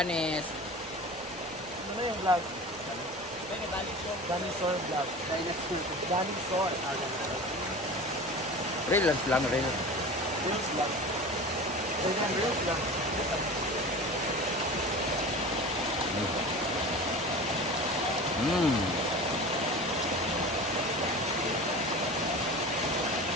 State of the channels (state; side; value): noise; left; rumble, 25 dB below the sound